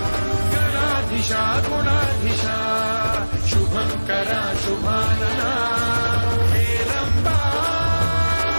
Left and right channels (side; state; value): both; inverted; correlation -1.00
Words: गणाधीशा गुणाधीशा शुभंकरा शुभानना हे रंबा